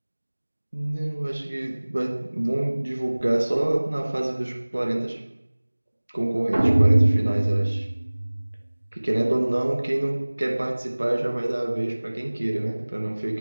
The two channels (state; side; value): inverted; both; correlation -1.00